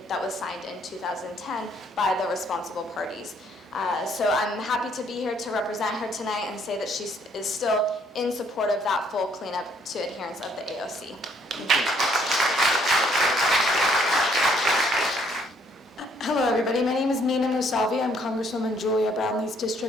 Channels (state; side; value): normal; both; correlation 0.66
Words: that was signed in 2010 by the responsible parties. So I'm happy to be here to represent her tonight and say that she is still in support of that full cleanup to adherence of the AOC. Thank you. Hello, everybody. My name is Nina Musavi. I'm Congresswoman Julia Brownlee's